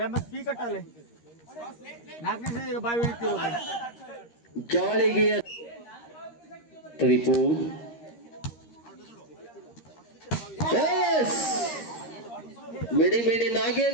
ಪಿ ಕಟ್ಟಲೆ 4ನೇ ಸಲ ಬಾಯಿ ಇಳಿತಿರೋ ಜಾಳಿಗೆ ತ್ರಿಪೂರ್. Yes! ಮಿಡಿ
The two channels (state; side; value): late; right; 13 ms